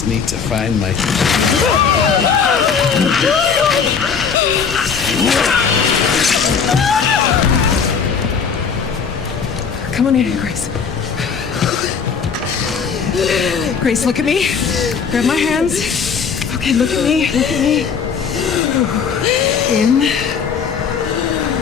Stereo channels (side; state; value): right; quieter; 6.2 dB